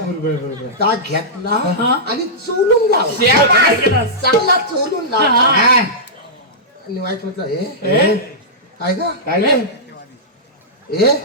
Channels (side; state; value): both; normal; correlation -0.13